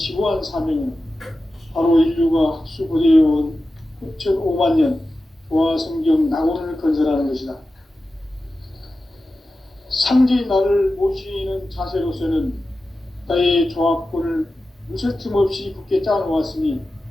사명은 바로 인류가 학수고대해온 9,500만 년 조화성경 낙원을 건설하는 것이다. 상제인 나를 모시는 자세로서는 나의 조합권을 무쇠틈 없이 굳게 짜놓았으니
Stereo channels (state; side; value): normal; both; correlation 0.93